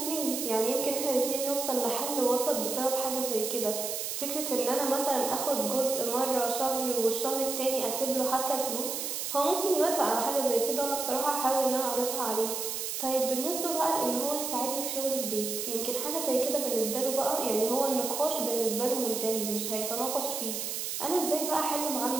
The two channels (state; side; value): noise; right; hiss, 3 dB below the sound